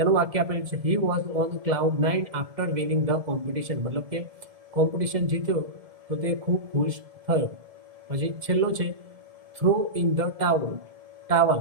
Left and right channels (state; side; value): late; left; 1.7 ms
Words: વાક્ય આપેલું છે he was on cloud 9 after winning the competition. મતલબ કે કોમ્પિટિશન જીત્યો તો તે ખૂબ ખુશ થયો. પછી છેલ્લો છે થ્રો ઇન ધ